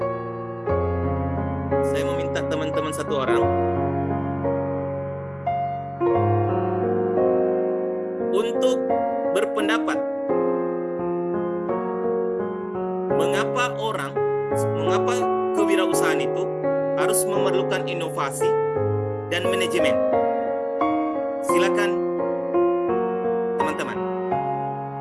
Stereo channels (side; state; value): both; identical; correlation 1.00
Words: teman-teman satu orang untuk berpendapat mengapa kewirausahaan itu harus memerlukan inovasi dan manajemen. Silakan teman-teman.